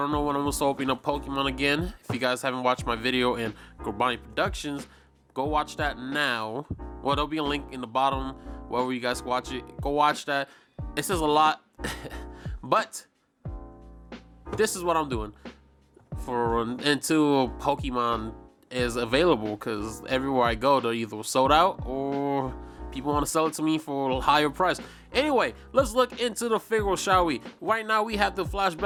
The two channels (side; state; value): both; identical; correlation 1.00